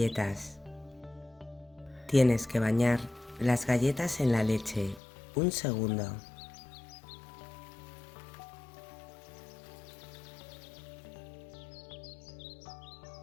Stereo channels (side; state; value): right; drops out; at 5.0 s